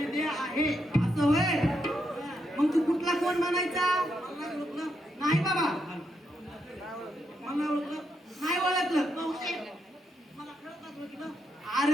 आहे असं होय. मग तू कुठला कोण म्हणायचा? नाही बाबा, मला ओळखलं नाही. ओळखलं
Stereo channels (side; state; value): both; normal; correlation 0.81